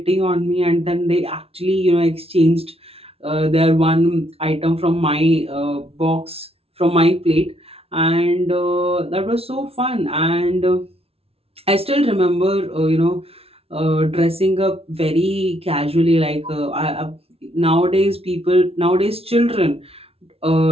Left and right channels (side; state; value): left; late; 0.28 ms